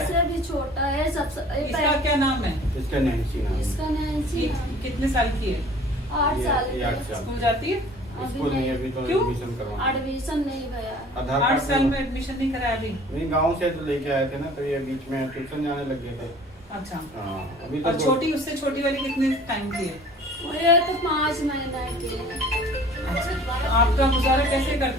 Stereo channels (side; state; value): both; normal; correlation 0.49